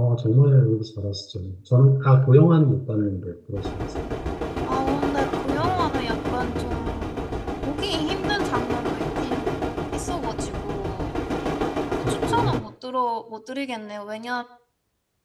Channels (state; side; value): identical; both; correlation 1.00